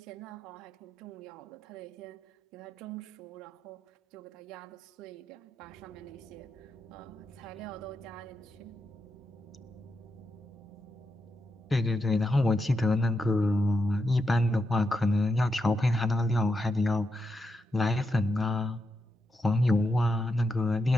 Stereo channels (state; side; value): normal; both; correlation 0.85